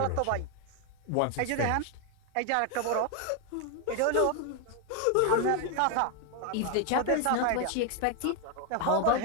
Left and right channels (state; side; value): different; both; correlation 0.00